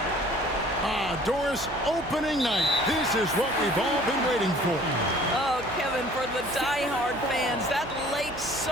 Doris, opening night. This is what we've all been waiting for. Oh, Kevin, for the diehard fans, that late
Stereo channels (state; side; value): noise; right; hum, 14 dB below the sound